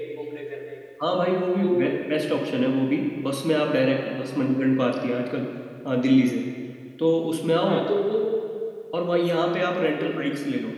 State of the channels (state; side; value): identical; both; correlation 1.00